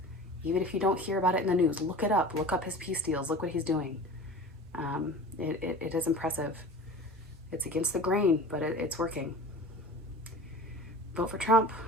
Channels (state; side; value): normal; both; correlation 0.37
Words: Even if you don't hear about it in the news, look it up. Look up his peace deals. Look what he's doing. It is impressive. It's against the grain, but it's working. Vote for Trump.